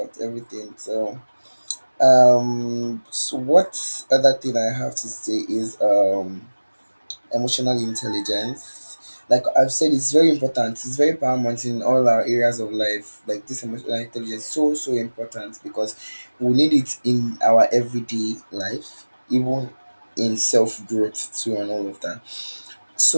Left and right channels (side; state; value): both; inverted; correlation -1.00